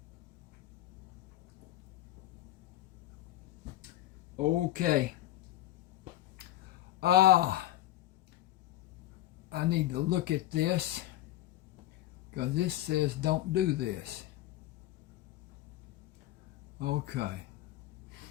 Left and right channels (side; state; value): right; quieter; 14.6 dB